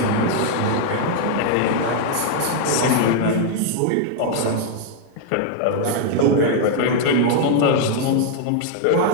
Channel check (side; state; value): both; different; correlation 0.00